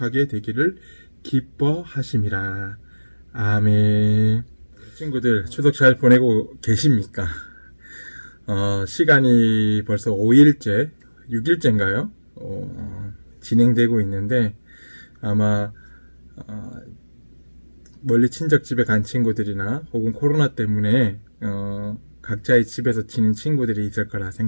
되기를 기뻐하심이라. 아멘. 친구들 추석 잘 보내고 계십니까? 시간이 벌써 5일째, 6일째인가요? 진행되고 있는데 아마 멀리 친척집에 간 친구들이나 혹은 코로나 때문에 각자의 집에서 지낸 친구들이 있을 거라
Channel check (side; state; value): both; inverted; correlation -1.00